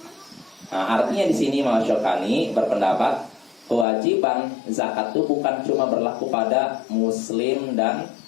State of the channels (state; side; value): drops out; right; at 3.9 s